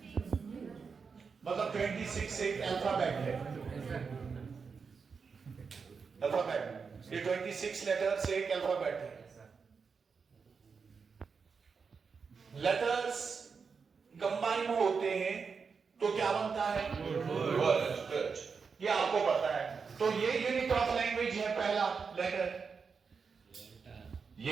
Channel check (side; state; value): left; quieter; 5.5 dB